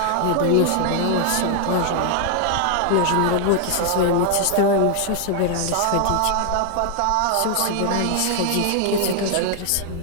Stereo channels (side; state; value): both; different; correlation 0.00